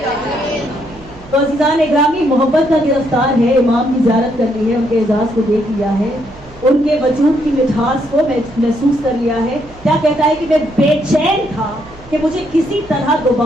تو عزیزان اکرامی محبت کا گرفتار ہے, امام کی زیارت کر لی ہے, ان کے اعزاز کو دیکھ لیا ہے, ان کے وجود کی مٹھاس کو محسوس کر لیا ہے. کیا کہتا ہے کہ میں بے چین تھا کہ مجھے کسی طرح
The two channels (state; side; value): noise; right; hum, 21 dB below the sound